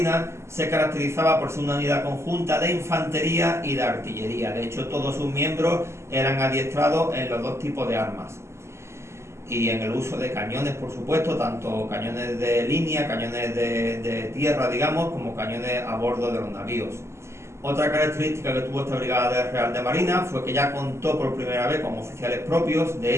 se caracterizaba por ser una unidad conjunta de infantería y de artillería. De hecho, todos sus miembros eran adiestrados en los 2 tipos de armas y en el uso de cañones, por supuesto, tanto cañones de línea, cañones de tierra, digamos, como cañones a bordo de los navíos. Otra característica que tuvo esta Brigada Real de Marina fue que ya contó por primera vez con oficiales propios. De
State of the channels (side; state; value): left; late; 0.13 ms